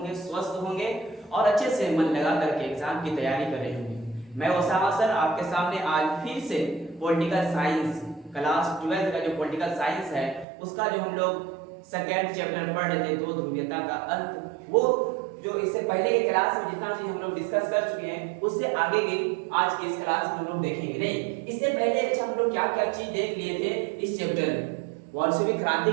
स्वस्थ होंगे और अच्छे से मन लगा करके एग्जाम की तैयारी कर रहे होंगे। मैं ओसामा सर आपके सामने आज फिर से पॉलिटिकल साइंस क्लास 12 का जो पॉलिटिकल साइंस है उसका जो हम लोग सेकेंड चैप्टर पढ़ रहे थे, दो ध्रुवीयता का अंत, वो जो इससे पहले की क्लास में जितना चीज हम लोग डिस्कस कर चुके हैं उससे आगे की आज की इस क्लास में हम लोग देखेंगे। नहीं, इससे पहले अच्छा हम लोग क्या क्या चीज देख लिए थे इस चैप्टर में। बोल्शेविक क्रांति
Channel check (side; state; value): left; drops out; at 10.5 s